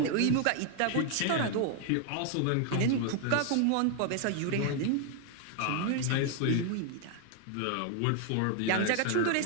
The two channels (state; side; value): different; both; correlation 0.00